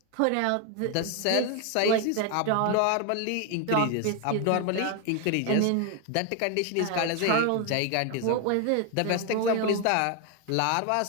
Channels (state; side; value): different; both; correlation 0.01